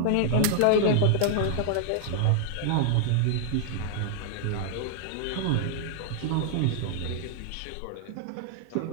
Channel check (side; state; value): both; different; correlation 0.00